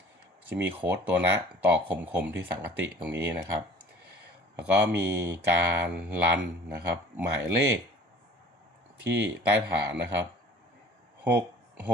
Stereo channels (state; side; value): normal; both; correlation 0.49